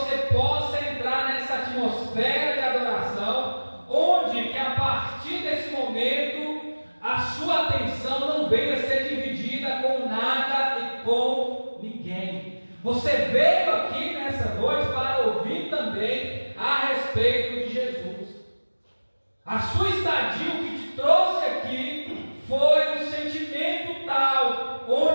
possa entrar nessa atmosfera de adoração, onde que a partir desse momento a sua atenção não venha a ser dividida com nada e com ninguém. Você veio aqui nessa noite para ouvir também a respeito de Jesus. A sua estadia, o que te trouxe aqui, foi um sentimento tal,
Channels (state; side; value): inverted; both; correlation -1.00